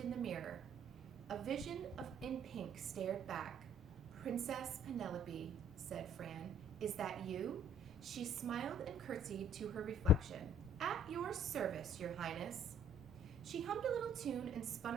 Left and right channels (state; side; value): normal; both; correlation 0.58